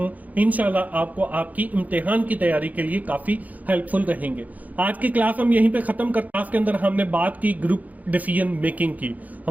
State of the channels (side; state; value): left; late; 0.078 ms